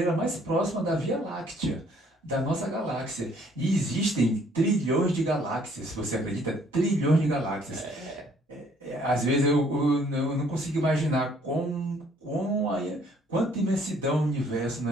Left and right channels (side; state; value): both; normal; correlation 0.62